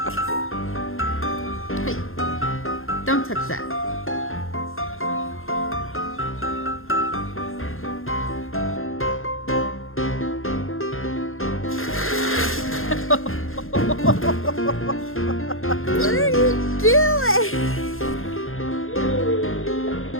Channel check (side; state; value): right; late; 0.60 ms